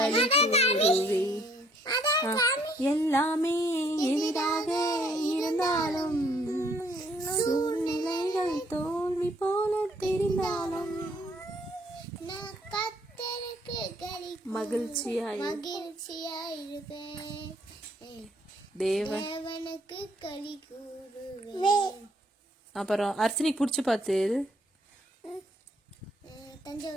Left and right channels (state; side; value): normal; both; correlation 0.65